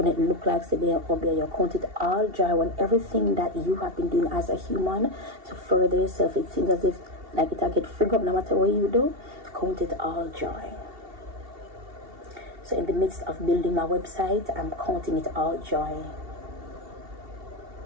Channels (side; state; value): left; late; 2.7 ms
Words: it look like severe obey you. Count it all joy when everything that you have been doing as a human to further yourself, it seems as if like it get frig up no matter what you do. Count it all joy. So in the midst of building my website, I'm counting it all joy.